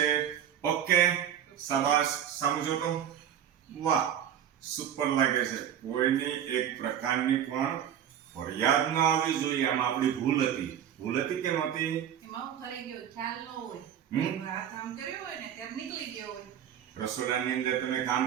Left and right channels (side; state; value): left; quieter; 9.7 dB